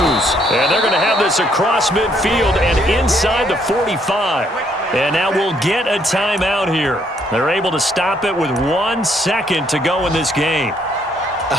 And they're going to have this across midfield and inside the 45. And now we'll get a timeout here. They're able to stop it with 1 second to go in this game.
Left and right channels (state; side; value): normal; both; correlation 0.69